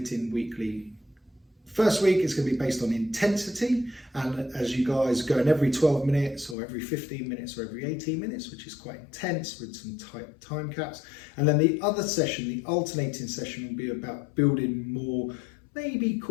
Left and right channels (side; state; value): right; drops out; at 6.6 s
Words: weekly. First week is going to be based on intensity, and as you guys go in every 12 minutes or every 15 minutes or every 18 minutes, which is quite intense with some tight time caps. And then the other session, the alternating session, will be about building more, maybe